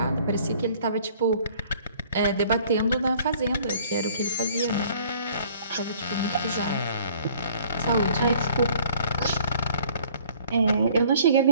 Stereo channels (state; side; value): inverted; both; correlation -0.55